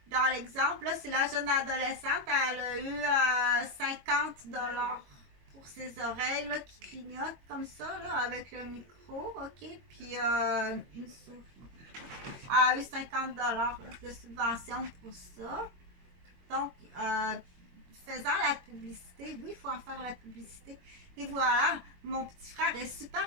Dans l'exemple, là, c'est la jeune adolescente, elle a eu 50$ pour ses oreilles, là, qui clignotent comme ça, là, avec le micro, ok? Puis une souris. Elle a eu 50$ là, de subvention pour ça. Donc, faisant la publicité, oui, il faut en faire la publicité. Et voilà, mon petit frère est super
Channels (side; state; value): left; late; 22 ms